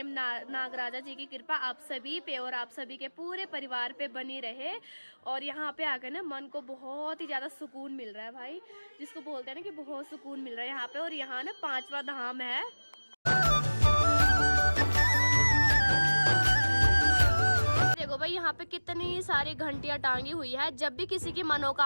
नागराजा जी की कृपा आप सभी पे और आप सभी के पूरे परिवार पे बनी रहे। और यहाँ पे आकर ना मन को बहुत ही ज़्यादा सुकून मिल रहा है भाई, जिसको बोलते हैं ना कि बहुत सुकून मिल रहा है यहाँ पे। और यहाँ ना 5वां धाम है। देखो भाई, यहाँ पे कितनी सारी घंटियां टांगी हुई है। जब भी किसी की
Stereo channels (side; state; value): both; inverted; correlation -1.00